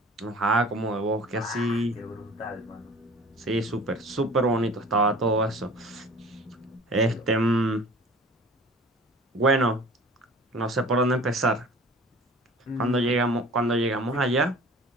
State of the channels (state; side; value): normal; both; correlation 0.44